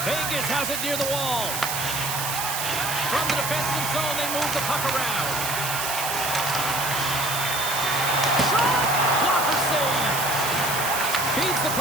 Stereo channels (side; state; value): right; noise; hiss, 2 dB below the sound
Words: Vegas has it near the wall. From the defensive zone, they move the puck around. Shot! Blocker save. Feeds the